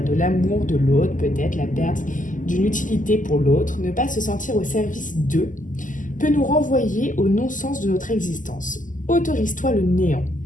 l'amour de l'autre, peut-être la perte d'une utilité pour l'autre. Ne pas se sentir au service d'eux peut nous renvoyer au non-sens de notre existence. Autorise-toi le néant.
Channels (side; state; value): right; late; 0.38 ms